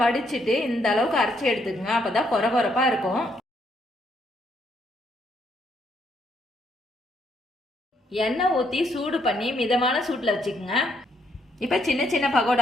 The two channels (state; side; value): normal; both; correlation 0.73